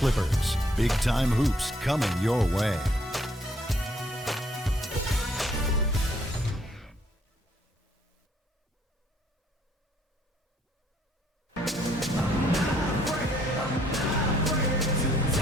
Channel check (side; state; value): both; normal; correlation 0.66